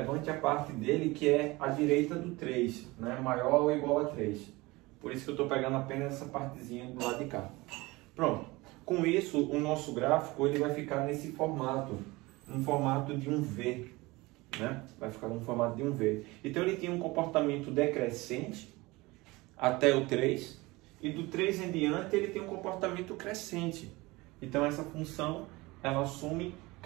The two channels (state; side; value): quieter; left; 22.1 dB